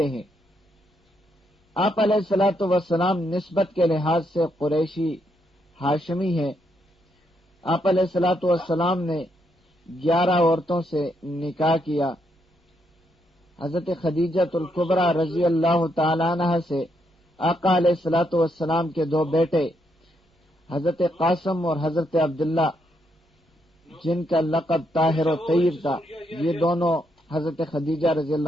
ہیں۔ آپ علیہ الصلوۃ والسلام نسبت کے لحاظ سے قریشی ہاشمی ہیں۔ آپ علیہ الصلوۃ والسلام نے 11 عورتوں سے نکاح کیا۔ حضرت خدیجہ الکبریٰ رضی اللہ تعالی عنہ سے آقا علیہ الصلوۃ والسلام کے 2 بیٹے حضرت قاسم اور حضرت عبداللہ، جن کا لقب طاہر و طیب تھا، یہ دونوں حضرت خدیجہ رضی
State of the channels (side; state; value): both; normal; correlation 0.77